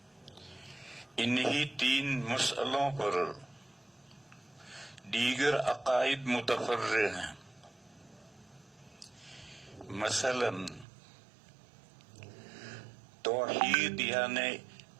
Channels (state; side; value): drops out; left; at 10.9 s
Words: انہی تین مسئلوں پر دیگر عقائد متفرع ہیں۔ مثلا توحید یعنی